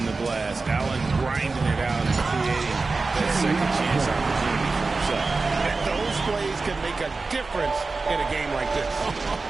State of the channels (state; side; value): quieter; left; 3.9 dB